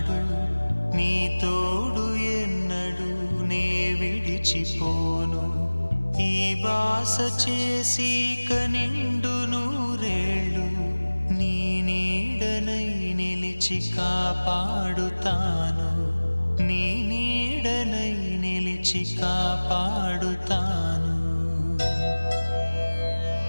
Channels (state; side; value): inverted; both; correlation -1.00